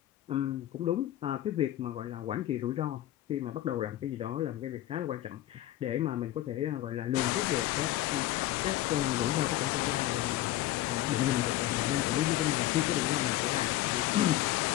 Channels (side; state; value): right; quieter; 14.6 dB